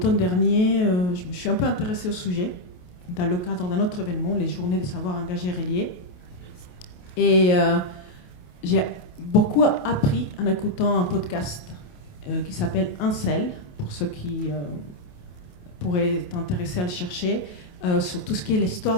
dernier, je me suis un peu intéressée au sujet dans le cadre d'un autre événement, les Journées des savoirs engagés reliés. Et j'ai beaucoup appris en écoutant un podcast qui s'appelle Incel, pour ceux qui pourraient être intéressés à le chercher, sur tout ce qui est l'histoire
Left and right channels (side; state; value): right; late; 28 ms